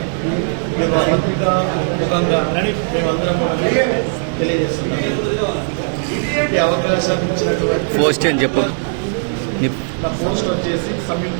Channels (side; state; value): left; silent; digital silence